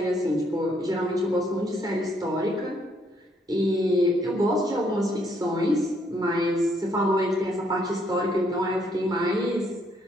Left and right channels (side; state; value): both; normal; correlation 0.70